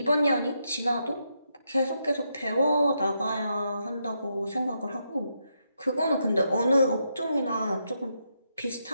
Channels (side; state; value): both; inverted; correlation -0.81